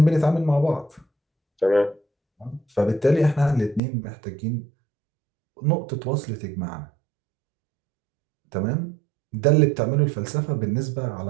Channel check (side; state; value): left; drops out; at 3.8 s